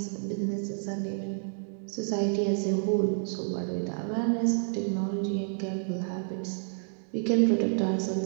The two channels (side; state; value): left; silent; digital silence